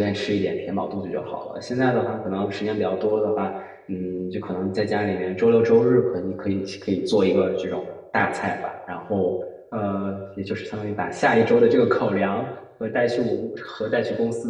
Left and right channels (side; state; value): both; identical; correlation 1.00